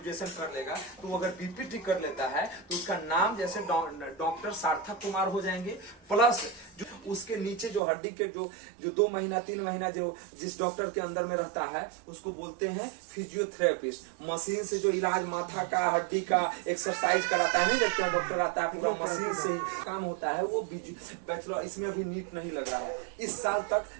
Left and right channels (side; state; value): left; drops out; at 7.8 s